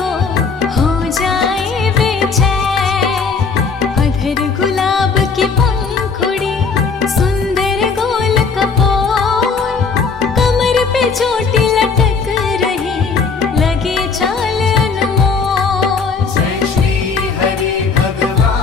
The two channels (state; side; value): quieter; right; 5.0 dB